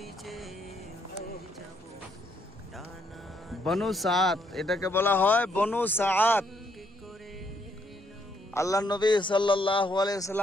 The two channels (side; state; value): both; normal; correlation 0.72